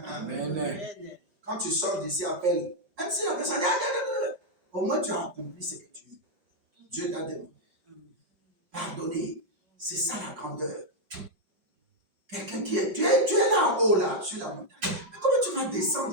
quand tu sors d'ici, appelle. Même si la personne dit, au moins tu as accompli ce que tu veux. Dieu t'a demandé. Pardonner, c'est ça la grandeur. Quelqu'un qui est, tu es là en haut, là, sur la montagne. Mais comment tu vas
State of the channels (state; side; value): late; left; 5.6 ms